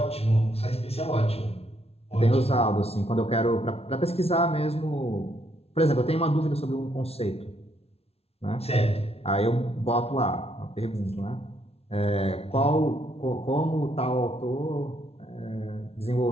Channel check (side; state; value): right; late; 0.30 ms